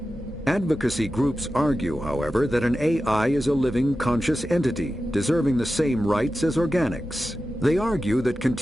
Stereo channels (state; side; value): normal; both; correlation 0.93